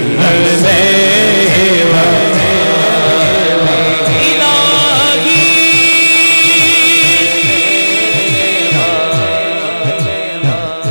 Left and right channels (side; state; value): both; inverted; correlation -1.00